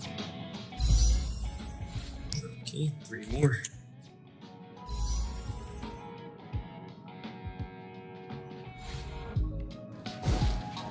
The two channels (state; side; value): identical; both; correlation 1.00